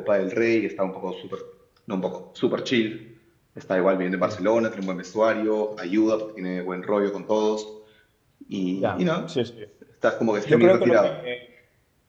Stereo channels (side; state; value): both; identical; correlation 1.00